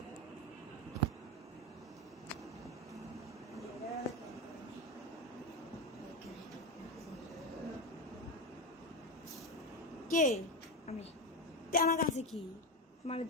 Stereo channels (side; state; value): both; normal; correlation 0.13